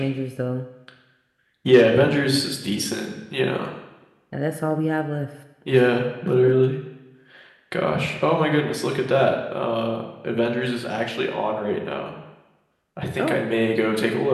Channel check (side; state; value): both; identical; correlation 1.00